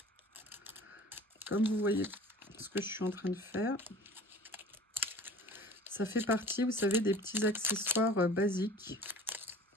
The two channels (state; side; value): normal; both; correlation 0.43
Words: Comme vous voyez ce que je suis en train de faire, ça fait partie, vous savez, des petits accessoires basiques